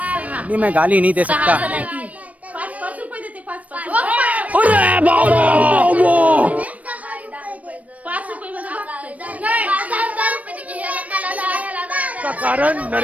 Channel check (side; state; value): left; late; 0.068 ms